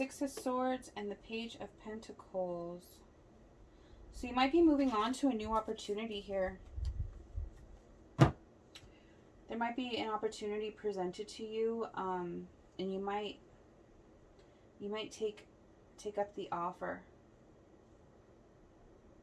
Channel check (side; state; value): both; identical; correlation 1.00